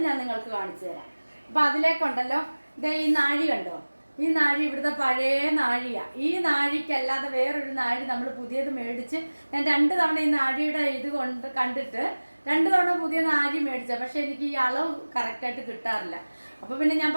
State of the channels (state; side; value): inverted; both; correlation -1.00